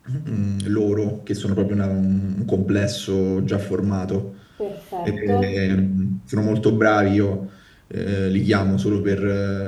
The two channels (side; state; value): both; identical; correlation 1.00